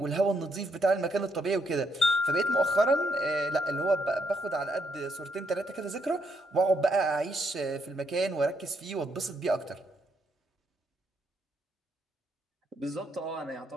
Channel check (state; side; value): normal; both; correlation 0.75